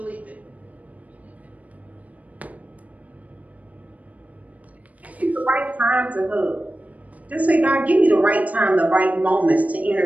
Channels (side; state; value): left; late; 0.070 ms